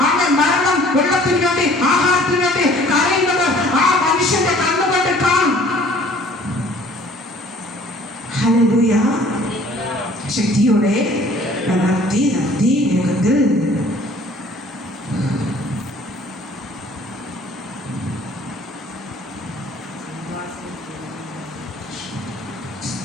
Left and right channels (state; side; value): normal; both; correlation 0.54